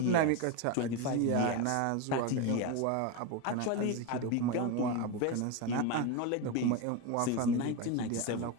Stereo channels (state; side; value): different; both; correlation 0.04